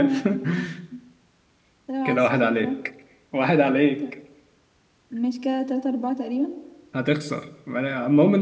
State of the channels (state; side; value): identical; both; correlation 1.00